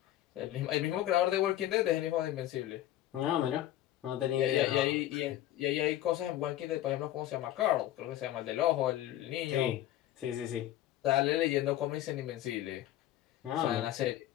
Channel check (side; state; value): right; quieter; 13.5 dB